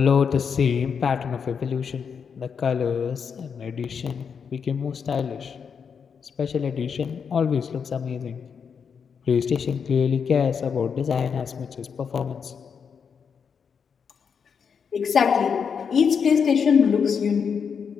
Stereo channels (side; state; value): right; quieter; 6.5 dB